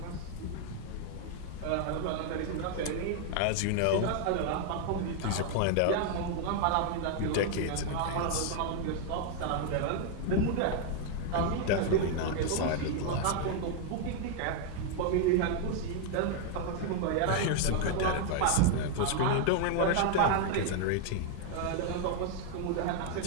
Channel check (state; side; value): different; both; correlation 0.00